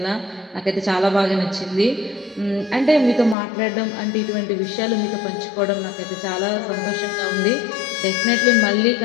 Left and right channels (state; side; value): drops out; right; at 3.4 s